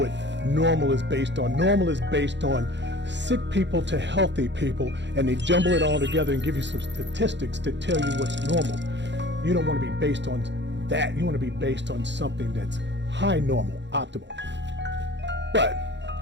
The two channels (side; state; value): left; late; 0.52 ms